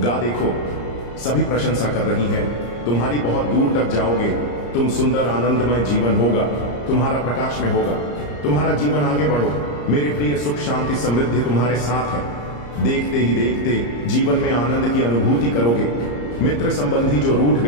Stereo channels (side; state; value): right; late; 34 ms